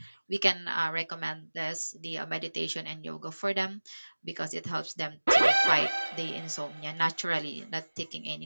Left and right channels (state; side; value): inverted; both; correlation -1.00